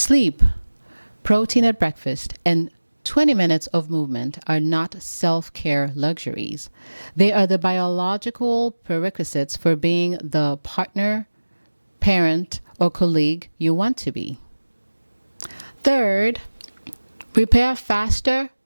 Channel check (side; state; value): both; inverted; correlation -1.00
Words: protein at breakfast, and 20 minutes of movement are not self-care luxuries. They are the biological prerequisites for being the partner, parent, or colleague you want to be. Third, repair faster,